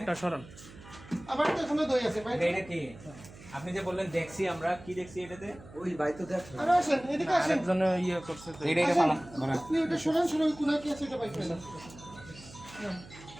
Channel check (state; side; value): noise; right; hum, 18 dB below the sound